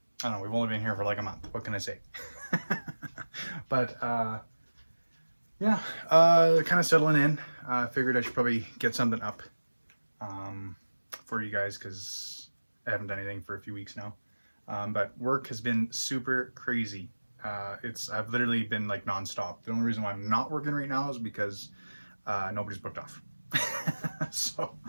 don't know, we've only been here for like a month. What can I say? But yeah, kind of settling in. Figured I should probably get something up for you guys because I haven't done anything for a few weeks now. But work has been super crazy. I've literally been like nonstop. The only reason why I'm not working right now is because nobody's booked off. So,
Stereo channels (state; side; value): inverted; both; correlation -1.00